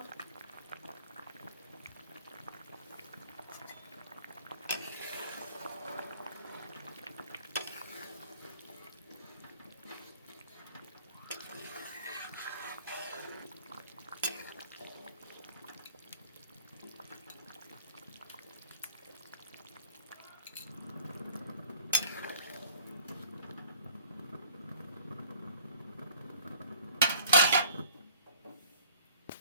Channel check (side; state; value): both; inverted; correlation -0.53